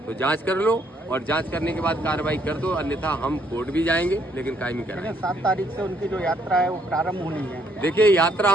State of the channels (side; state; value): both; normal; correlation 0.70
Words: तो जांच कर लो और जांच करने के बाद कार्रवाई कर दो, अन्यथा हम कोर्ट भी जाएंगे लेकिन कायमी कराएंगे। 7 तारीख से उनकी जो यात्रा है वो प्रारंभ होनी है। देखिए, यात्रा